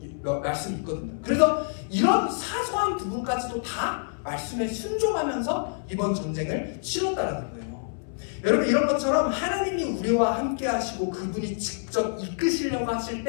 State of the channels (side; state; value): right; silent; 60 dB below the other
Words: 이런 말씀이 있거든요. 그래서 이런 사소한 부분까지도 다 말씀에 순종하면서 이번 전쟁을 치렀다라는 거예요. 여러분, 이런 것처럼 하나님이 우리와 함께 하시고 그분이 직접 이끄시려고 하실